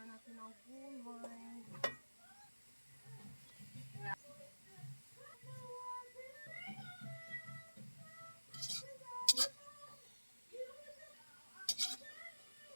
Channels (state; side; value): inverted; both; correlation -1.00